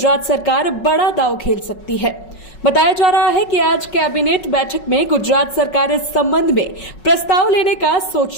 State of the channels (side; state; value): right; late; 5.4 ms